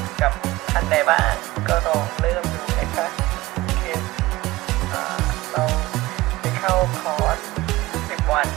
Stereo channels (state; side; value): quieter; left; 18.9 dB